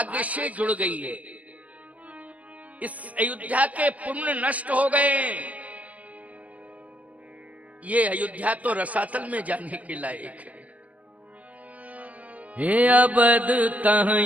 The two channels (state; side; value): late; left; 0.070 ms